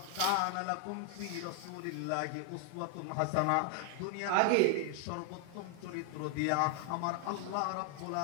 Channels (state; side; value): different; both; correlation 0.00